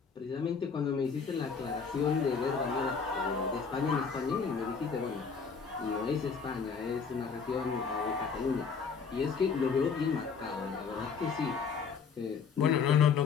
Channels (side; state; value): right; quieter; 5.8 dB